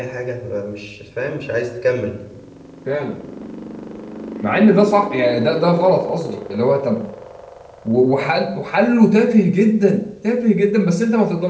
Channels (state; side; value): identical; both; correlation 1.00